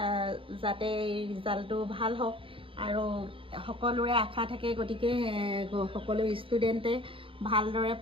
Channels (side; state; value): left; late; 0.26 ms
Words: যাতে ৰিজাল্টটো ভাল হওক আৰু সকলোৰে আশা থাকে গতিকে সকলো ষ্টুডেণ্টে ভালদৰে